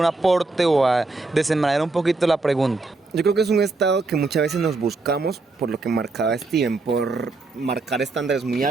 aporte o a desenmarañar un poquito la pregunta? Yo creo que es un estado que muchas veces nos buscamos, por lo que marcaba Steven, por marcar estándares muy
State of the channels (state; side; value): quieter; left; 3.5 dB